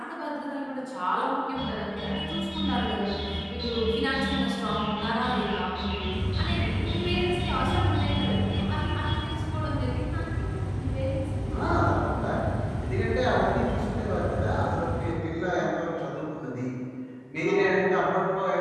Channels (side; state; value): both; identical; correlation 1.00